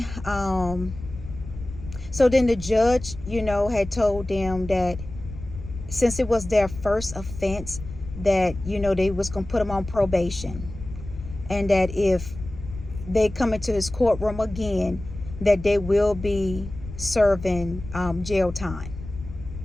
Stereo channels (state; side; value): noise; left; rumble, 12 dB below the sound